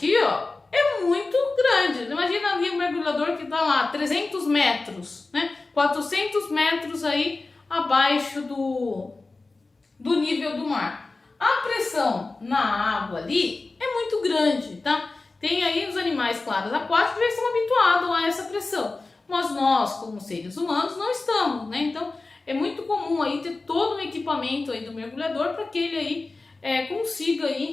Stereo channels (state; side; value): quieter; right; 3.5 dB